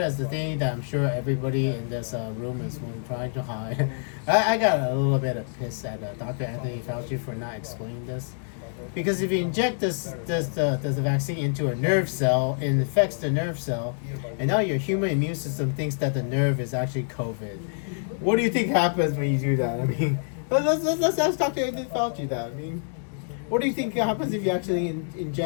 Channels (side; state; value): right; silent; digital silence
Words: is the thing that I'm sure everybody in this room is trying to hide. I got a little bit of piss at Dr. Anthony Fauci for not explaining this. Because if you inject this vaccine into a nerve cell, it infects the nerve cell, and now your human immune system thinks that the nerve is actually COVID. What do you think happens when you do that? I mean, let's ask Dr. Anthony Fauci that. I mean, what do you think happens if you actually